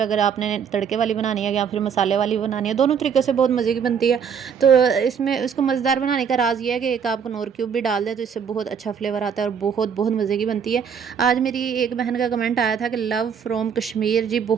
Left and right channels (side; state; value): left; quieter; 7.1 dB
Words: अगर आपने तड़के वाली बनानी है या फिर मसाले वाली बनानी है, दोनों तरीक़ों से बहुत मज़े की बनती है। तो इसमें इसको मज़ेदार बनाने का राज़ ये है कि एक आप कनौर क्यूब भी डाल दें तो इससे बहुत अच्छा फ्लेवर आता है और बहुत बहुत मज़े की बनती है। आज मेरी एक बहन का कमेंट आया था कि लव फ्रॉम कश्मीर, जी